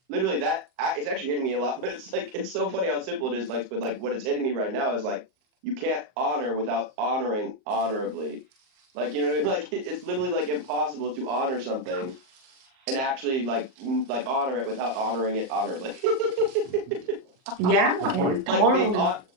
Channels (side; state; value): left; late; 38 ms